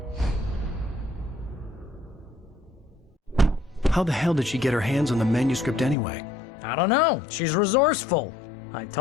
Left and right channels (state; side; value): drops out; right; at 6.0 s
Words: How the hell did she get her hands on the manuscript anyway? I don't know. She's resourceful. I